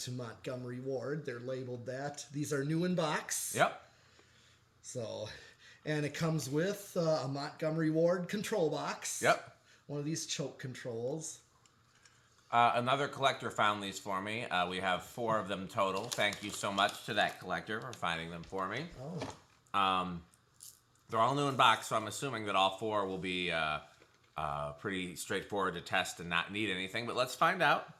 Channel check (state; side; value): identical; both; correlation 1.00